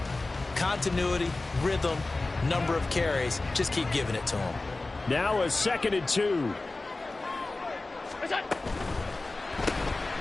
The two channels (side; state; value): right; quieter; 3.2 dB